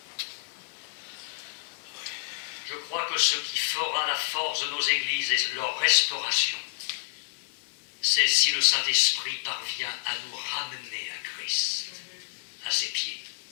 Je crois que ce qui fera la force de nos églises et leur restauration, c'est si le Saint-Esprit parvient à nous ramener à Christ, à ses pieds.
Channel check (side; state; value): right; silent; 59 dB below the other